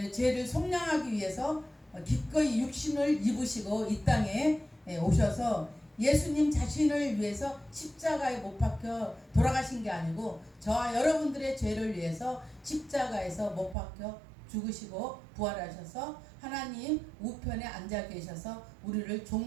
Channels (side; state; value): left; drops out; at 13.8 s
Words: 죄를 속량하기 위해서 기꺼이 육신을 입으시고 이 땅에 오셔서 예수님 자신을 위해서 십자가에 못 박혀 돌아가신 게 아니고 저와 여러분들의 죄를 위해서 십자가에서 못 박혀 죽으시고 부활하셔서 하나님 우편에 앉아 계셔서 우리를